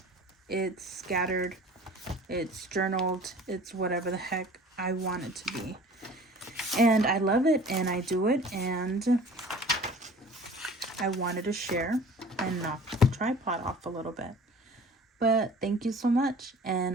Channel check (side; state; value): both; normal; correlation 0.45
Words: It's scattered. It's journaled. It's whatever the heck I want it to be. And I love it, and I do it, and I wanted to share and knock the tripod off a little bit. But thank you so much, and